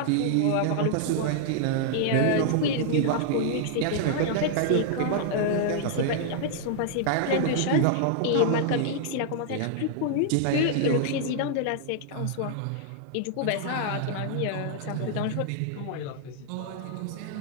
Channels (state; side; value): different; both; correlation -0.01